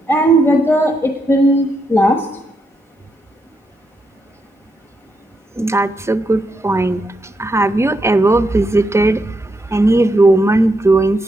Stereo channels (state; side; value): normal; both; correlation 0.81